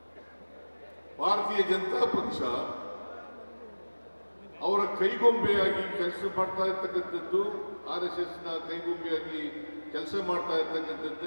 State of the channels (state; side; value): inverted; both; correlation -1.00